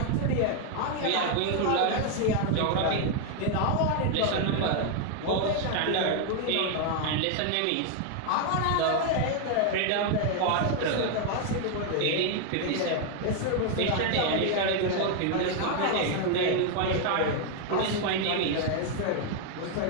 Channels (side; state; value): both; different; correlation 0.01